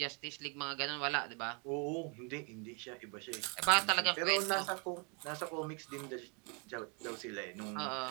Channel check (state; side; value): quieter; left; 34.8 dB